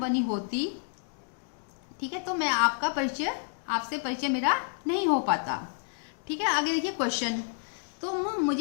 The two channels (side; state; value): right; silent; 58 dB below the other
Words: होती, ठीक है, तो मैं आपसे परिचय मेरा नहीं हो पाता। ठीक है, आगे देखिए क्वेश्चन। तुम